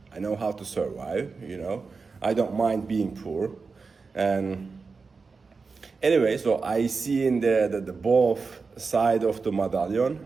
I know how to survive, you know. I don't mind being poor. And anyway, so I see in the both side of the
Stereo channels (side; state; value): left; quieter; 4.6 dB